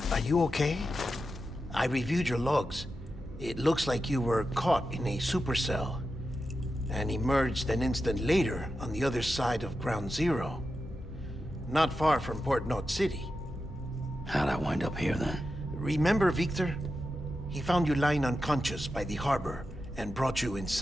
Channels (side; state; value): both; normal; correlation 0.90